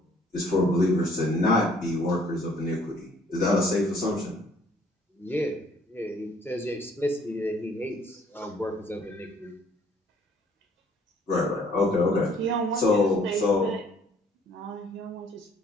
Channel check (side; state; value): both; normal; correlation 0.60